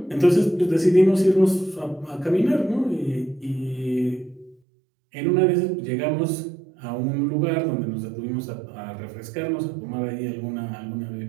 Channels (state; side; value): drops out; left; at 4.5 s